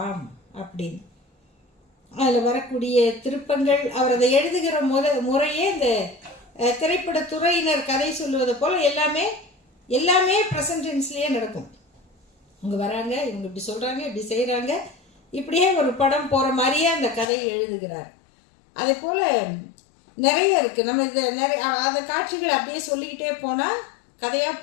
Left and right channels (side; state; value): right; drops out; at 17.3 s